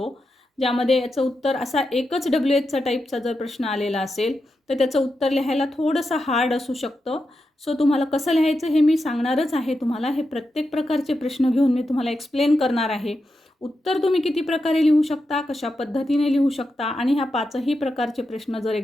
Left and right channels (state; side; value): normal; both; correlation 0.88